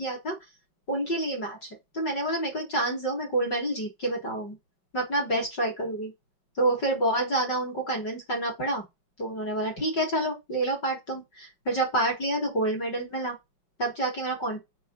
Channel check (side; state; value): right; late; 5.3 ms